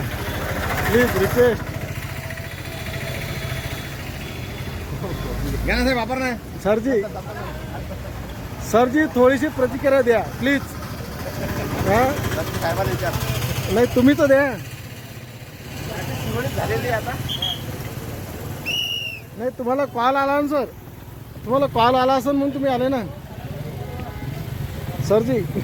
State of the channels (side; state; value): both; identical; correlation 1.00